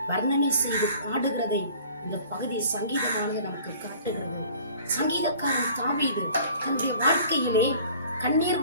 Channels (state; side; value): inverted; both; correlation -0.49